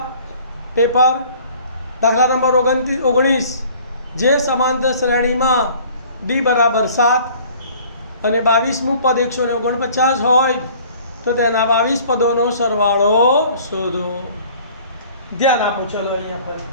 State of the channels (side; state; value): both; inverted; correlation -0.51